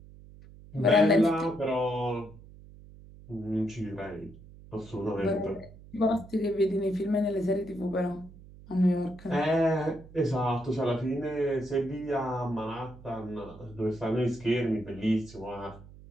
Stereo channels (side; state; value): right; noise; hum, 19 dB below the sound